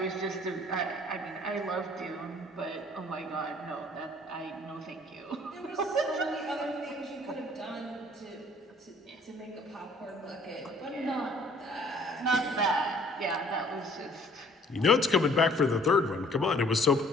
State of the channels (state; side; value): normal; both; correlation 0.57